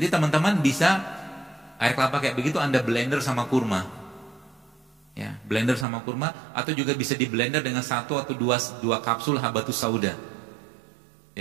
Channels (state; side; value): drops out; left; at 5.9 s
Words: teman-teman bisa air kelapa kayak begitu Anda blender sama kurma. Ya, blender sama kurma, atau juga bisa di blender dengan 1 atau 2 kapsul habatus sauda.